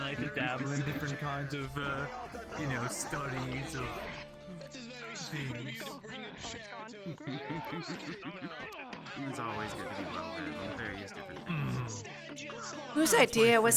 like to dabble in different kinds of, studies of things. It's always good to be well read on various different things. Whose idea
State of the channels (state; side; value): identical; both; correlation 1.00